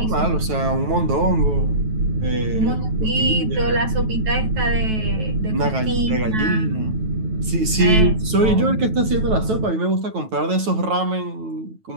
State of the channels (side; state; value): left; late; 9.2 ms